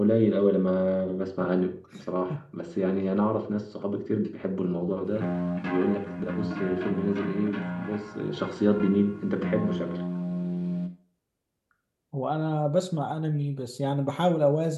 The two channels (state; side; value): identical; both; correlation 1.00